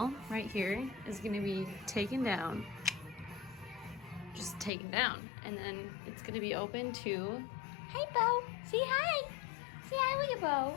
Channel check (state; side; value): drops out; right; at 4.7 s